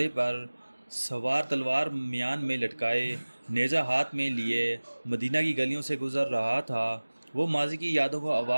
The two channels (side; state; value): both; inverted; correlation -1.00